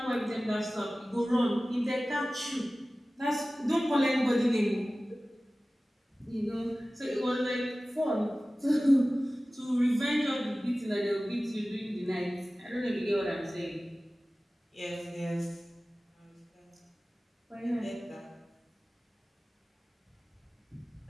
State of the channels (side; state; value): both; normal; correlation 0.97